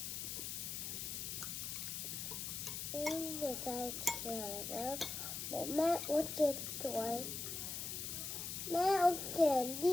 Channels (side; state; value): left; noise; hiss, 4 dB below the sound